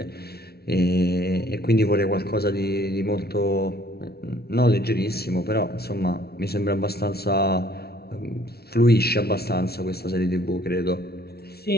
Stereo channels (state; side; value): late; right; 0.45 ms